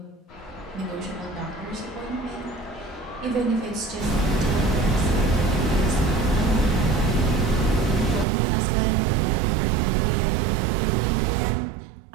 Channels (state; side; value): drops out; left; at 8.2 s